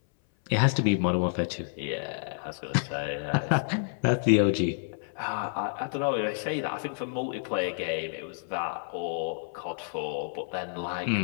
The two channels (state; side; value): silent; right; 58 dB below the other